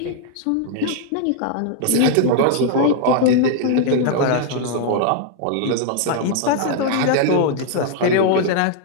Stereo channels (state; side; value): different; both; correlation 0.00